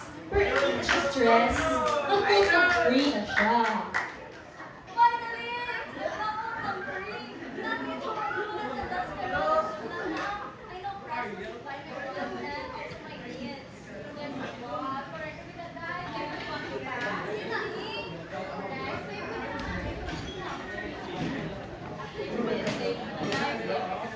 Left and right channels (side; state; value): both; identical; correlation 1.00